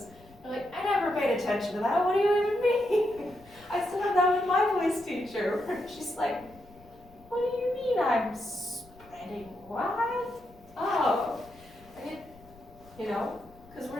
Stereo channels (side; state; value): left; noise; rumble, 24 dB below the sound